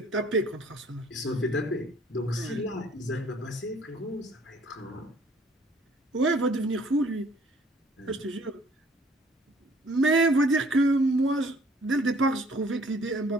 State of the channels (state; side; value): normal; both; correlation 0.57